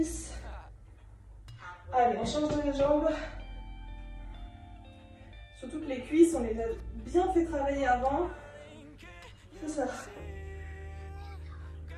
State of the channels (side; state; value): both; identical; correlation 1.00